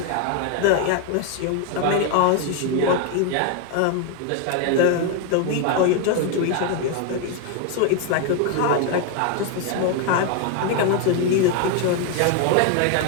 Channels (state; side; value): different; both; correlation 0.01